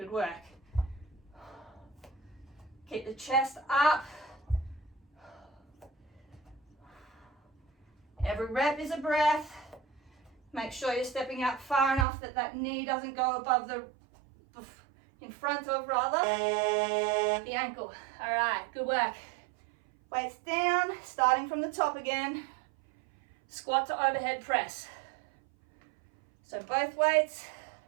work. Keep the chest up. Every rep is a breath. Make sure you're stepping out far enough that that knee doesn't go above in front of rather, the ankle. All right, good work. Weights down, starting from the top again. Squat to overhead press. So both weights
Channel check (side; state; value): left; drops out; at 12.1 s